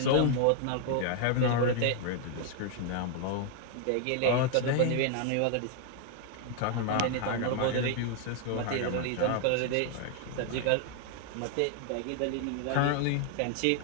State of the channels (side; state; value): both; different; correlation 0.00